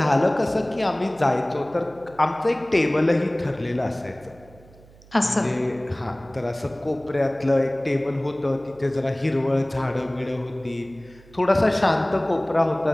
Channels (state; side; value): noise; right; hum, 24 dB below the sound